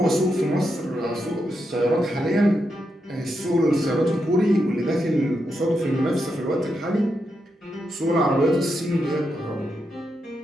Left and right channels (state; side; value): normal; both; correlation 0.84